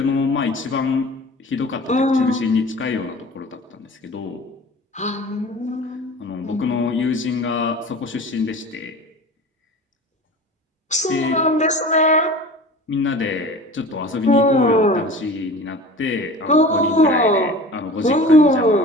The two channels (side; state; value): both; normal; correlation 0.39